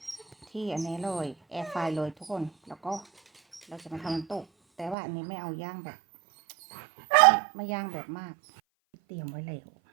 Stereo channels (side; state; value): left; drops out; at 5.0 s